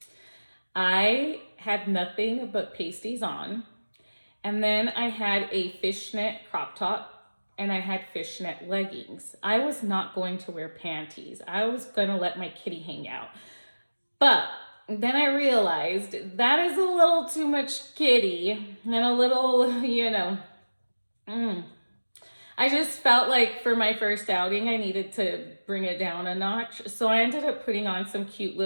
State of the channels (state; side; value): inverted; both; correlation -1.00